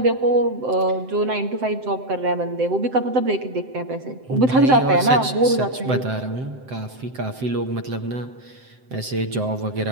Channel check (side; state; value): left; late; 7.8 ms